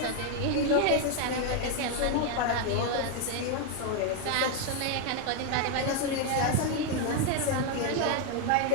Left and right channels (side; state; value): both; different; correlation 0.01